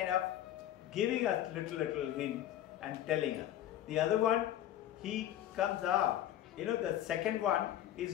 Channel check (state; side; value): quieter; right; 12.2 dB